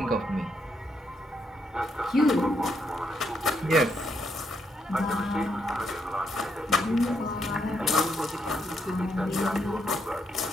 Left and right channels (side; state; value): both; normal; correlation 0.77